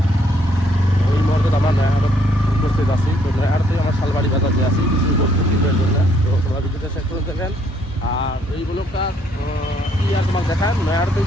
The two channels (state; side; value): normal; both; correlation 0.68